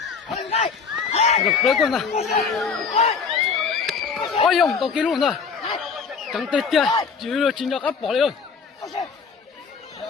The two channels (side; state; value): right; quieter; 5.5 dB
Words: được đấy con này ôi ông tao kia luôn rồi chẳng tết kia chỉ là chính áp bỏ đi ơi